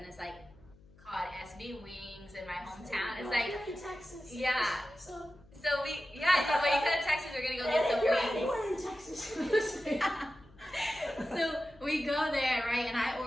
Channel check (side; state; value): left; noise; hum, 25 dB below the sound